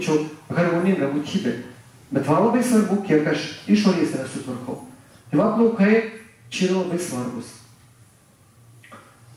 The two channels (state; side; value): identical; both; correlation 1.00